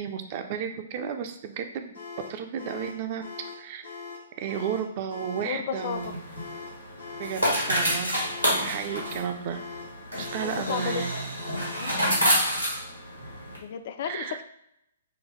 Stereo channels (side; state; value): both; inverted; correlation -0.50